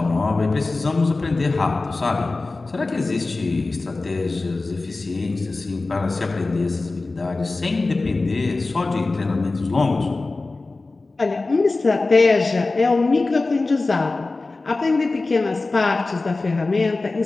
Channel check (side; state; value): right; quieter; 3.4 dB